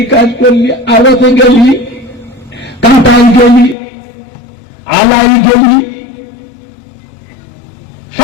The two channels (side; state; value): right; drops out; at 3.8 s